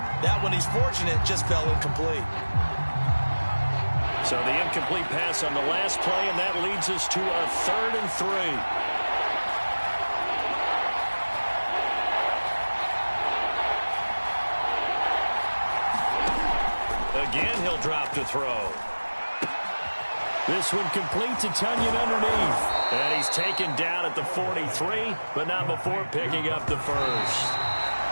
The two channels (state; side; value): inverted; both; correlation -1.00